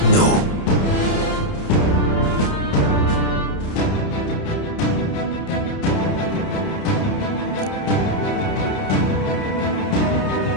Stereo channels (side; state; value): right; late; 30 ms